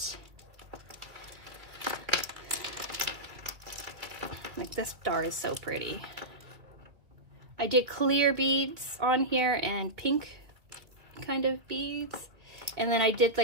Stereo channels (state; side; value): late; left; 2.4 ms